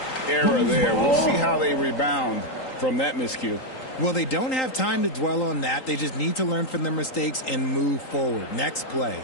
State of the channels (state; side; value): late; right; 3.8 ms